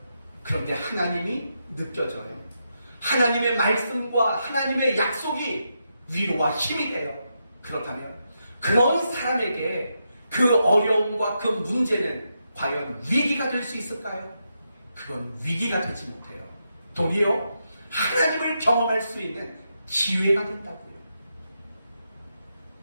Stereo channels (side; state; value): both; inverted; correlation -0.84